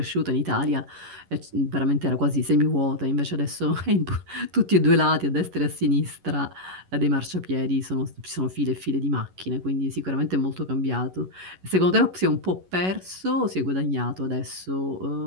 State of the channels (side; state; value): left; late; 11 ms